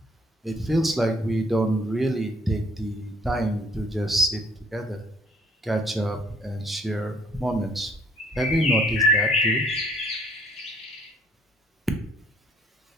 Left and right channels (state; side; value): normal; both; correlation 0.63